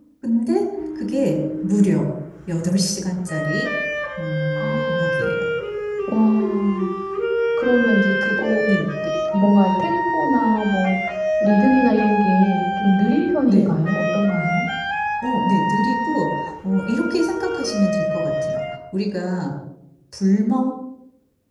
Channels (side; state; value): both; identical; correlation 1.00